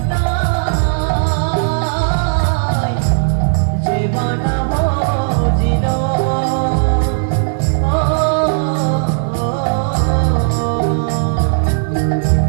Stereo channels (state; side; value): silent; left; digital silence